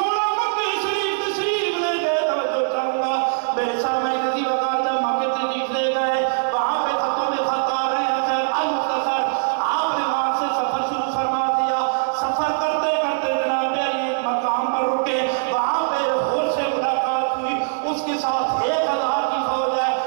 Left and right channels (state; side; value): silent; left; digital silence